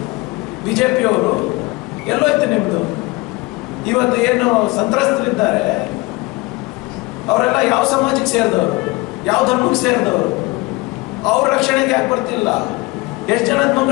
ಬಿಜೆಪಿಯವರು, ಎಲ್ಲೋಯ್ತು ನಿಮ್ದು? ಇವತ್ತು ಏನು ಸಂತ್ರಸ್ತರಿದ್ದಾರೆ ಅವರೆಲ್ಲ ಯಾವ ಸಮಾಜಕ್ಕೆ ಸೇರಿದವರು, ಯಾವ ಧರ್ಮಕ್ಕೆ ಸೇರಿದವರು? ಅವ್ರ ರಕ್ಷಣೆಗೆ ಯಾಕೆ ಬರ್ತಿಲ್ಲ? ಎಷ್ಟು ಜನದ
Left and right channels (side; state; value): right; quieter; 23.3 dB